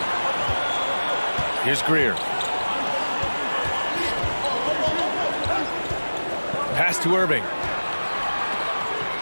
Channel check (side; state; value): both; inverted; correlation -1.00